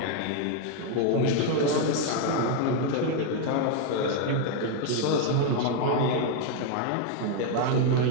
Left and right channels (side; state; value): both; different; correlation 0.01